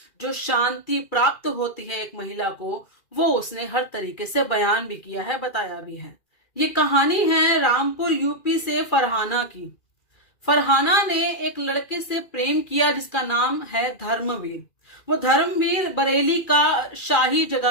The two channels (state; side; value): late; right; 2.3 ms